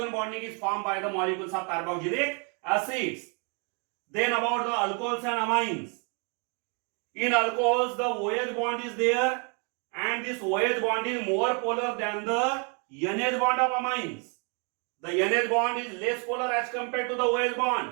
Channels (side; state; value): left; quieter; 36.4 dB